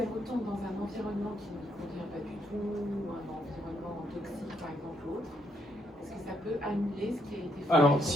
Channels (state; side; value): normal; both; correlation 0.75